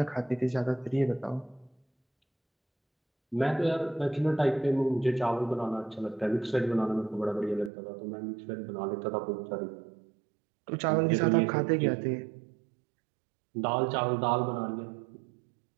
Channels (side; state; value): left; drops out; at 7.7 s